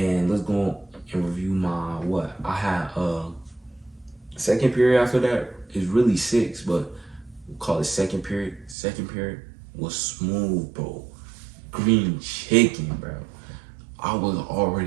let's go and review my what? I had second period after that is really 6, but we'll call it second period. Second period was smooth, bro. Green chicken, bro. I was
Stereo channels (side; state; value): left; drops out; at 8.8 s